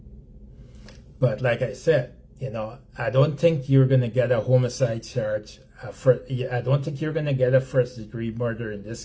But like I said, I don't think you're going to get a homicide charge. I don't think you're going to get a first-degree murder in this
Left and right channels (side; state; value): both; identical; correlation 1.00